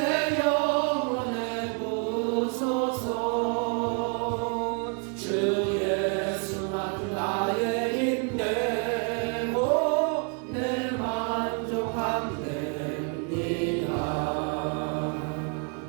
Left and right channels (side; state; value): left; quieter; 38.4 dB